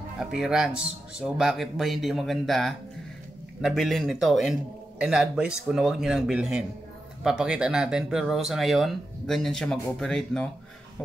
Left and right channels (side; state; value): both; normal; correlation 0.89